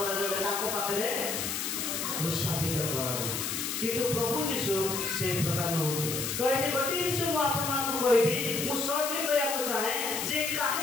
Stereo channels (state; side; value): noise; left; hiss, 3 dB below the sound